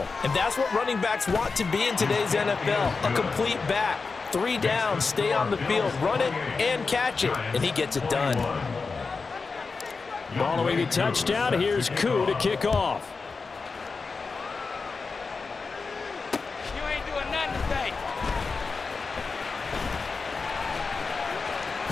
And that's what running backs want to be in today's NFL, a complete back. 3 downs, stay on the field, run it, and catch it. And he gets it done. Following the touchdown, here's Koo to kick off. You ain't doing nothing today.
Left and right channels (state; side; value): quieter; right; 4.5 dB